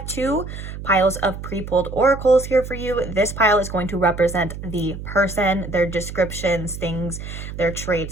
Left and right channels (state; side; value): noise; right; hum, 9 dB below the sound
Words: 2 piles of pre-pulled oracles here for you. This pile is going to represent the person, their descriptions, things, their